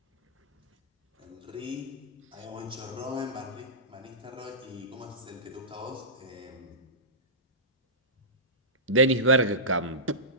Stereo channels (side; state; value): both; normal; correlation -0.18